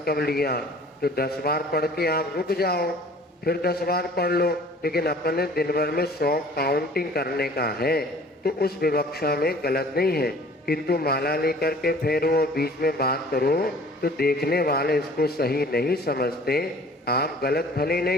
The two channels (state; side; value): normal; both; correlation 0.50